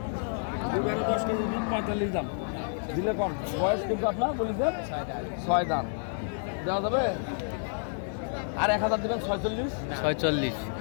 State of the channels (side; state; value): right; silent; digital silence